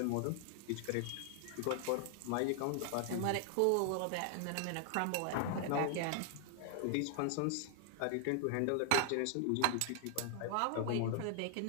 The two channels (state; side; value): different; both; correlation 0.00